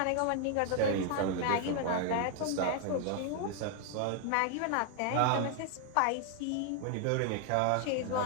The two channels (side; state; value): both; different; correlation 0.00